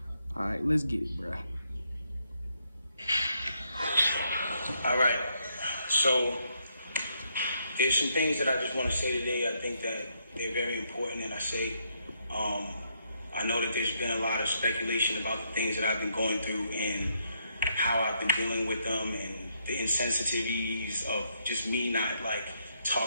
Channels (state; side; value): inverted; both; correlation -0.75